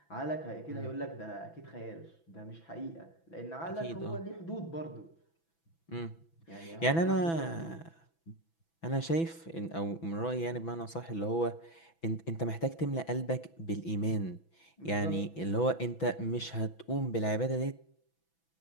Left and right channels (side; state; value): right; late; 6.0 ms